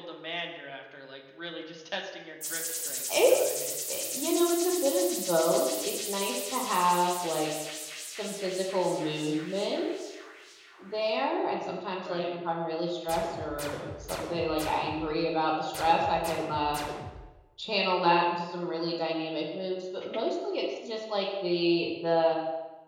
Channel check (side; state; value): both; identical; correlation 1.00